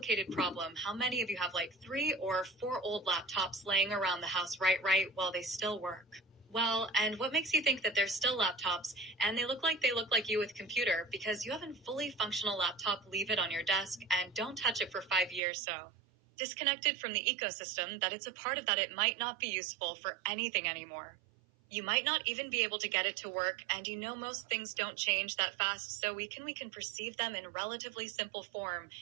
problem. How many of you have like 3 or 4 old laptops laying around the house right while they still work? Well, and what makes you think that they're still laptops and they look like you with computer? Because you have a fully functional laptop, leave it on your desk and don't touch it for 5 years. So disconnected from the ecosystem that it's a part of, that it might not be useful for anything anymore. You might not even be able to get it to work, and you know most things don't change that fast, so we can perceive them in relatively simple form,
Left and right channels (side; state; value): left; drops out; at 15.4 s